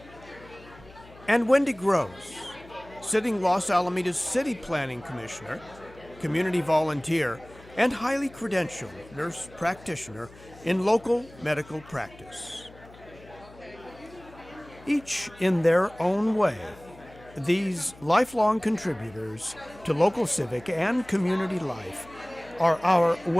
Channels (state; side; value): noise; left; hum, 22 dB below the sound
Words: and Wendy Grose, sitting Los Alamitos City Planning Commissioner, community volunteer, and highly credentialed nurse practitioner in local medical practice. Each in their own way, these lifelong contributors to local civic and community life are our